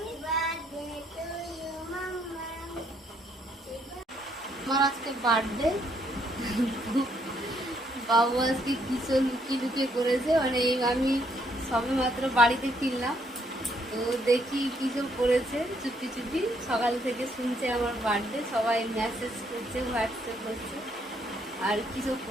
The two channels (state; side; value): normal; both; correlation 0.70